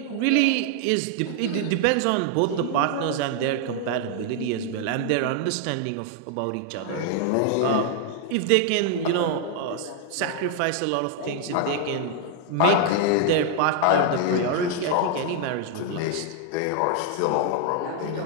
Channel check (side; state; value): both; different; correlation 0.00